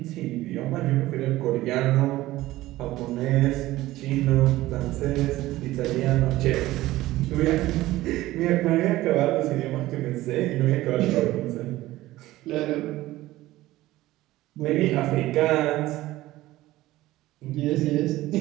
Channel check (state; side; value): quieter; left; 16.7 dB